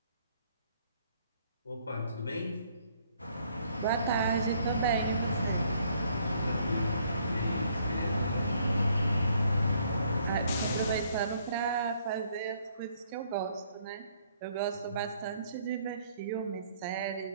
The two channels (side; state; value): both; inverted; correlation -0.66